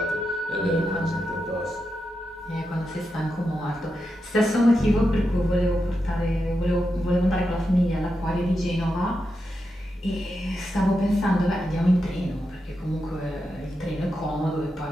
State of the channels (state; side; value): normal; both; correlation 0.87